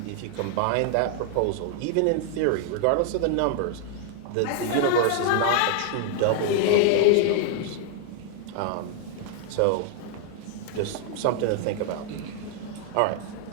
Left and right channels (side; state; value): both; different; correlation 0.00